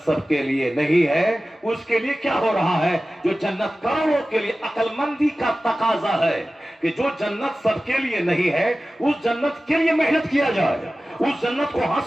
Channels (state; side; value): normal; both; correlation 0.96